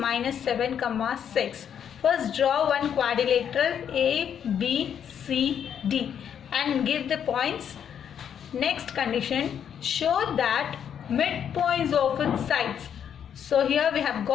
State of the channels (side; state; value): right; quieter; 8.6 dB